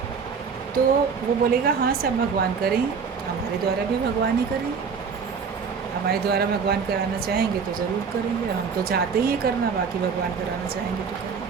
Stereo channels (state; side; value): quieter; left; 5.8 dB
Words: तो वो बोलेगा हाँ सब भगवान करेंगे, हमारे द्वारा भी भगवान ही करेंगे। हमारे द्वारा भगवान कराना चाहेंगे तो ज़रूर करेंगे, हम तो चाहते ही करना, बाकी भगवान कराना चाहेंगे तो करेंगे।